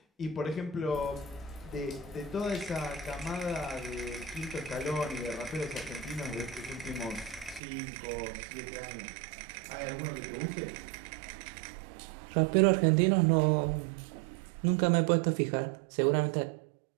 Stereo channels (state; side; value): drops out; left; at 7.6 s